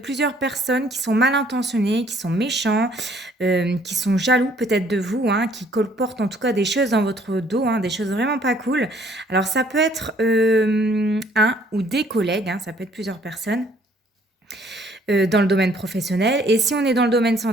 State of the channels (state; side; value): normal; both; correlation 0.61